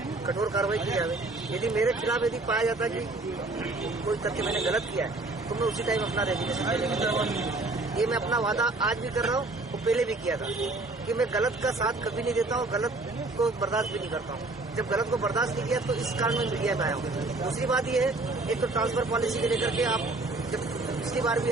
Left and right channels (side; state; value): left; quieter; 3.1 dB